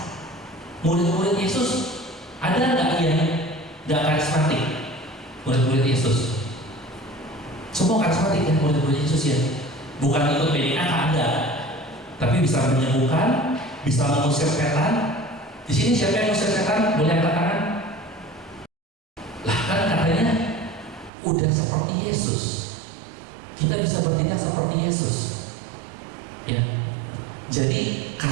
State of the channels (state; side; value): drops out; left; at 21.1 s